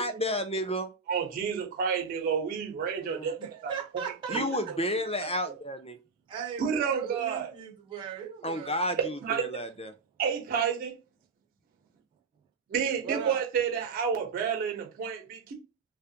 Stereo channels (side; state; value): left; quieter; 4.4 dB